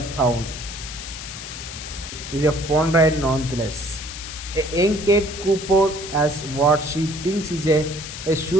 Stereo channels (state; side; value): noise; left; hiss, 10 dB below the sound